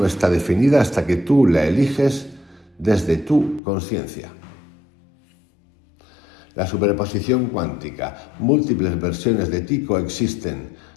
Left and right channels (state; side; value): drops out; right; at 3.6 s